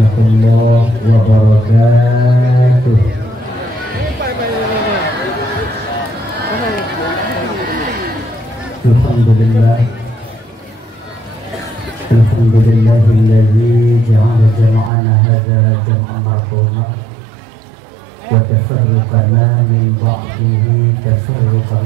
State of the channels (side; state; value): left; drops out; at 14.9 s